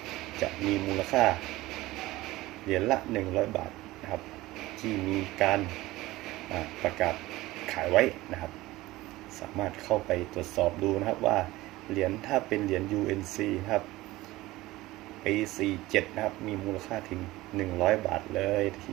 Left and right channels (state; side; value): quieter; left; 18.3 dB